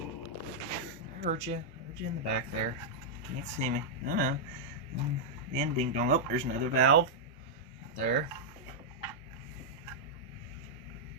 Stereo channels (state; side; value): normal; both; correlation -0.07